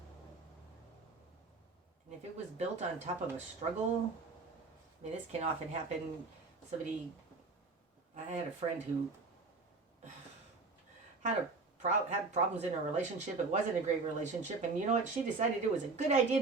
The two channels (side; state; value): left; quieter; 3.9 dB